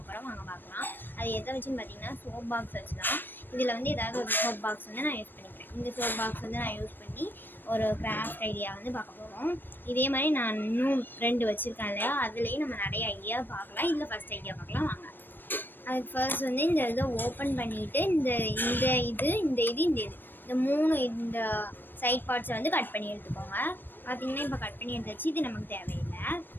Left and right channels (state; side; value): late; right; 0.094 ms